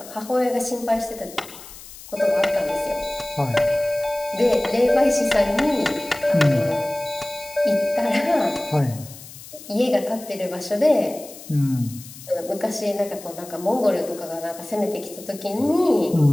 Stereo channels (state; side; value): noise; left; hiss, 17 dB below the sound